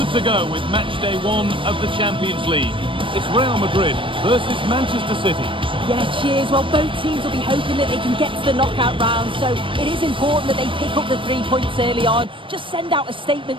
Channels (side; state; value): left; late; 0.25 ms